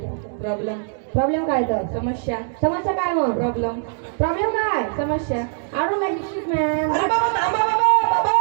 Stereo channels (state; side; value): silent; left; digital silence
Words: प्रॉब्लेम प्रॉब्लेम काय तर समस्या समस्या काय मग प्रॉब्लेम प्रॉब्लेम काय समस्या I don't make shit man अरे बाबा थांबा बाबा. बाबा